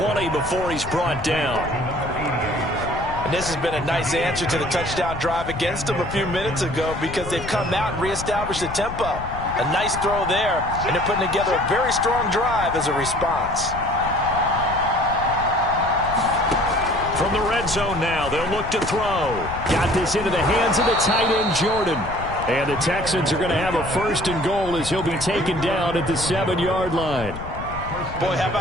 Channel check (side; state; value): left; noise; rumble, 10 dB below the sound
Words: before he's brought down. And this has been a nice answer to the touchdown drive against them a few minutes ago because they've come out and reestablished the tempo. A nice throw there, and they're putting together a very strong drive as a response. From the red zone now, they'll look to throw. Got this into the hands of the tight end, Jordan. And the Texans are going to have a 1st and goal as he'll be taken down at the 7-yard line. Boy, how